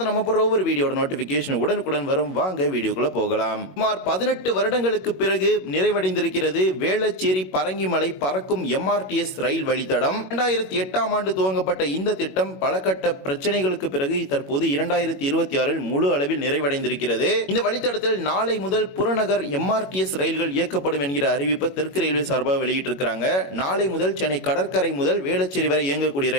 நம்ம போற ஒவ்வொரு வீடியோட நோட்டிபிகேஷன் உடனுக்குடன் வரும். வாங்க வீடியோக்குள்ள போகலாம். சுமார் 18 வருடங்களுக்கு பிறகு நிறைவடைந்திருக்கிறது வேளச்சேரி பரங்கிமலை பறக்கும் MRTS ரயில் வழித்தடம். 2008ஆம் ஆண்டு துவங்கப்பட்ட இந்த திட்டம் பல கட்ட பிரச்சனைகளுக்கு பிறகு தற்போது 2026இல் முழு அளவில் நிறைவடைந்திருக்கிறது. இந்த வழித்தடத்தில் நாளை முதல் புறநகர் MRTS ரயில்கள் இயக்கப்படும் என்கிற அறிவிப்பை தெற்கு ரயில்வே சார்பாக வெளியிட்டிருக்கிறாங்க. நாளை முதல் சென்னை கடற்கரை முதல் வேளச்சேரி வரை இயங்கக்கூடிய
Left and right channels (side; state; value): right; late; 21 ms